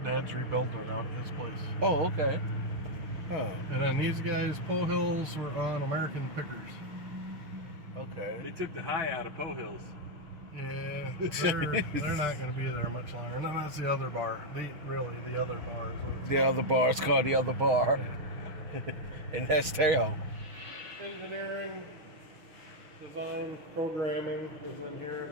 Dad's rebuilding it out at his place. Oh, okay. Huh. And then these guys, Poe Hills, were on American Pickers. Okay. They took the high out of Poe Hills. Yeah, they're not going to be there much longer. And then that's the other bar. The other bar. The other bar is called the other bar. Yeah. And that's town. Engineering, design, programming is in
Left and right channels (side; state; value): left; late; 6.4 ms